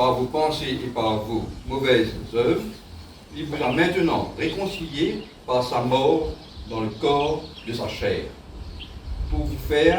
vos pensées et par vos mauvaises œuvres, il vous a maintenant réconciliés par sa mort dans le corps de sa chair, pour vous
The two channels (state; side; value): identical; both; correlation 1.00